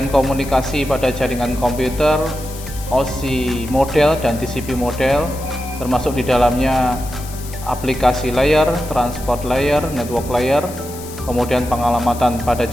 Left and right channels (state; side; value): noise; left; hiss, 15 dB below the sound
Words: komunikasi pada jaringan komputer, OSI model dan TCP model, termasuk di dalamnya aplikasi layer, transport layer, network layer, kemudian pengalamatan pada